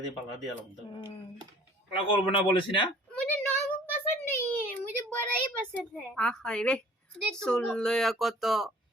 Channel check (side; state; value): both; normal; correlation 0.51